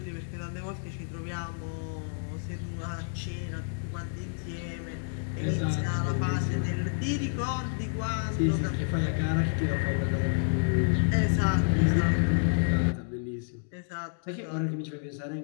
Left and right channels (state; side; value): silent; right; digital silence